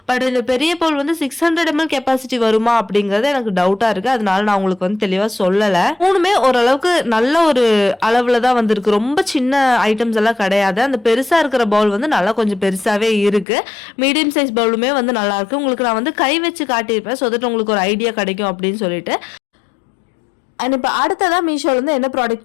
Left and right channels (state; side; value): drops out; right; at 13.5 s